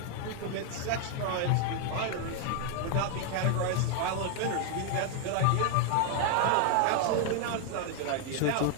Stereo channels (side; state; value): both; different; correlation 0.00